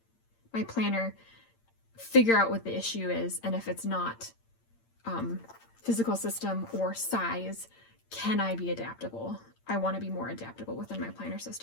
my planner, figure out what the issue is, and if it's not physical system or size, can I be adaptable? I want to be more adaptable within my planner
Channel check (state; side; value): late; right; 8.8 ms